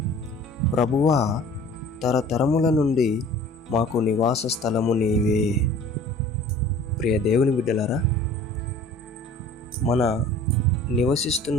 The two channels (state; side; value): normal; both; correlation 0.46